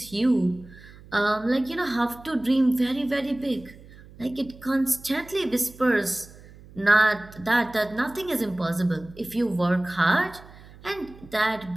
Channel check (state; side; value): noise; right; hum, 21 dB below the sound